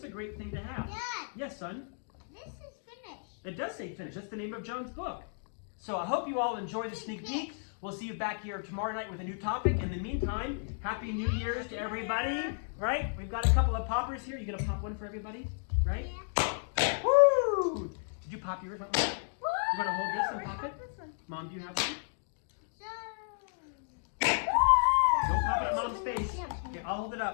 a great thing to have. Dad! Yes, son? This is finished. It does say finish. That's the name of Joan's book. So I hope you all enjoy the sneak peek. We'll see you back here tomorrow night with a new topic. In the meantime, Happy New Year's to everybody. Right? We've got a couple of poppers here. You gonna pop one for everybody? Right? Yeah. Woo! Did you pop yours? Mom? You wanna hold this and pop it? This one. Mom, do you have one? So. Don't pop it at Mom's face. Okay, I'll hold it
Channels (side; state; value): right; silent; digital silence